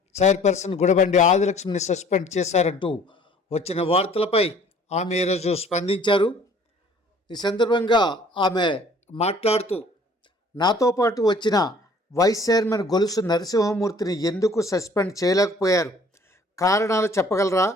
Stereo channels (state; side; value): normal; both; correlation 0.54